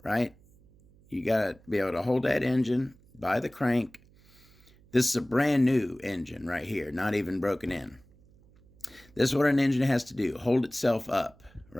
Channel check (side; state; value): right; noise; hum, 28 dB below the sound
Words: right? You got to be able to hold that engine by the crank. This is a brand new engine right here, not even broken in. This is what an engine has to do, hold itself up,